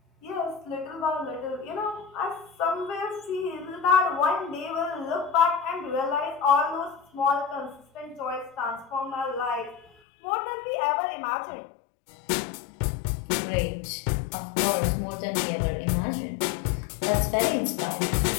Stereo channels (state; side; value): drops out; right; at 9.9 s